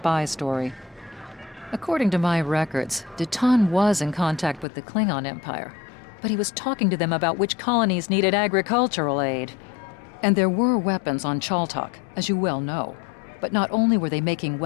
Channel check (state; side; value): drops out; right; at 4.7 s